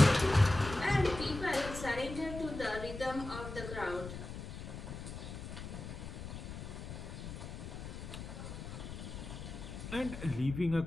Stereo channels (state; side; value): noise; left; rumble, 9 dB below the sound